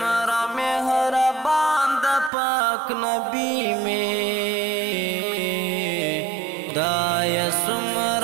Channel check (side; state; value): left; drops out; at 2.3 s